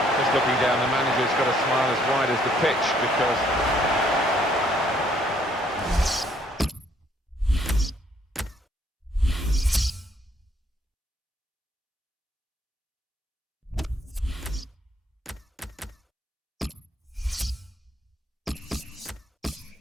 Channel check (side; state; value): both; normal; correlation 0.66